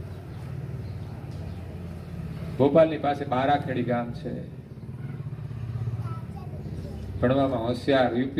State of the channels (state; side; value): identical; both; correlation 1.00